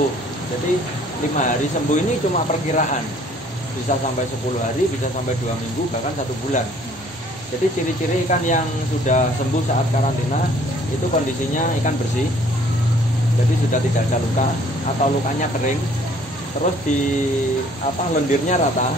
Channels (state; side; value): normal; both; correlation 0.58